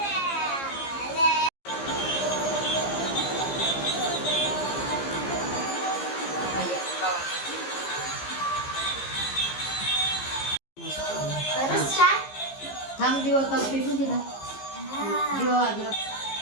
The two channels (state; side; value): late; right; 15 ms